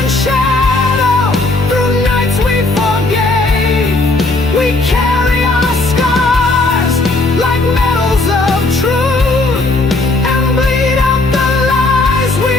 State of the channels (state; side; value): quieter; right; 3.0 dB